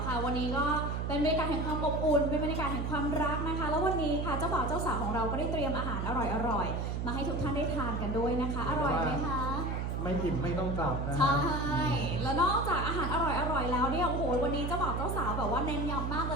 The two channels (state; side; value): noise; right; hum, 2 dB below the sound